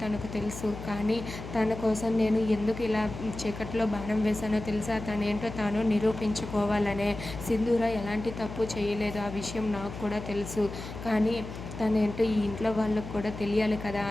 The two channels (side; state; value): left; noise; hum, 10 dB below the sound